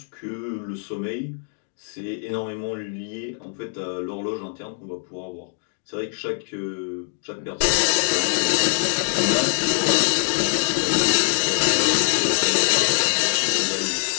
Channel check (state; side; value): silent; right; 63 dB below the other